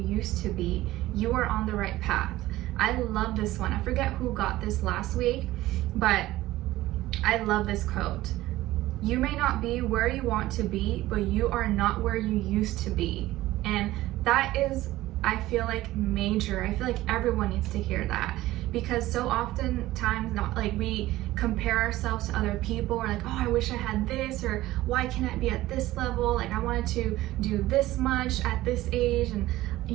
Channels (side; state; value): left; quieter; 16.5 dB